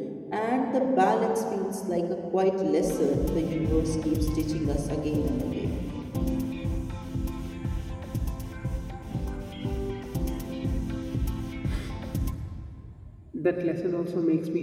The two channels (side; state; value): both; identical; correlation 1.00